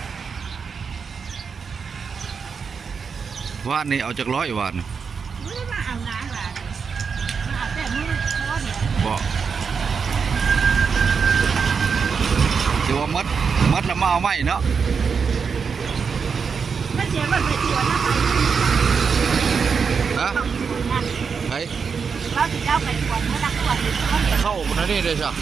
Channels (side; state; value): left; quieter; 5.8 dB